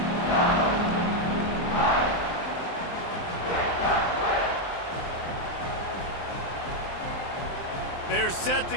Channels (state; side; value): late; right; 23 ms